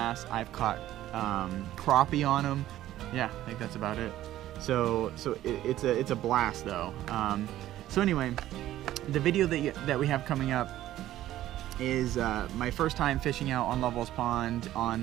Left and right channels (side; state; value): left; quieter; 13.7 dB